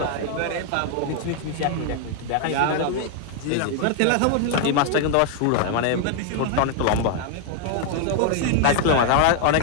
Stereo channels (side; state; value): both; different; correlation 0.00